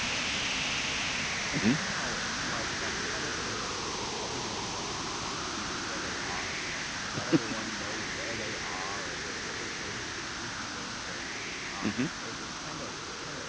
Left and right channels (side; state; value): both; identical; correlation 1.00